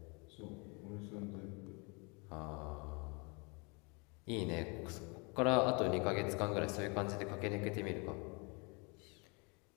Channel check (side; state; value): right; quieter; 31.4 dB